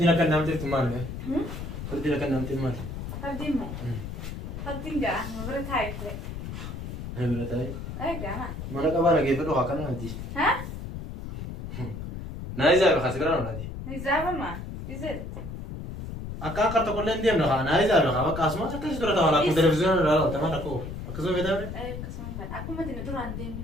كنا نعمل تلفون مالك فردينا كنا نعمل تلفون مالك فردين ما فردين جا ما بريت هاي كله هاي بلاتاي أي جا ما أنا كمان كيف لو هكذا نادي ها نايزة بخسرنا نادي نزابة ما يزيد أكا كرت كل يوم نخا نايزة بخا بس أسمع تكش ترى تمام أكو تلفزيون ولا تمام أكو أكو بيتا بري أي كسمان فان أكو ما تندور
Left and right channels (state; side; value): noise; left; rumble, 8 dB below the sound